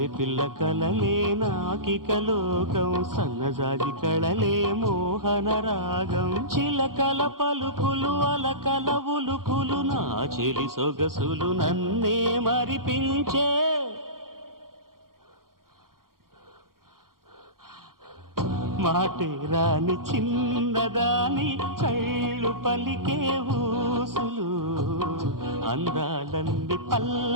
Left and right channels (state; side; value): late; left; 0.92 ms